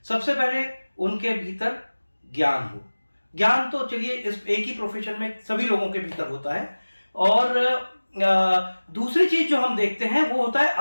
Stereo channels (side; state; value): both; inverted; correlation -1.00